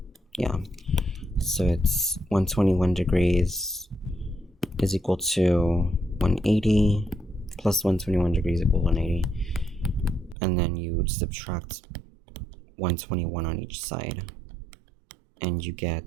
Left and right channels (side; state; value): left; drops out; at 10.4 s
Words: Yeah, so it's 121 degrees is equal to 180 plus 121 degrees equals 180. And then you would subtract 121 on each side, and you